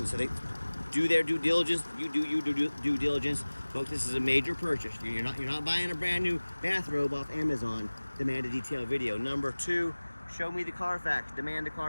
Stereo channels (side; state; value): both; inverted; correlation -1.00